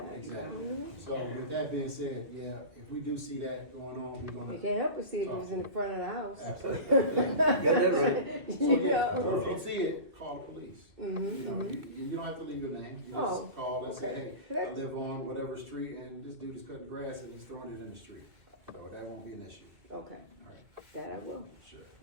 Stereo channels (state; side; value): late; left; 2.5 ms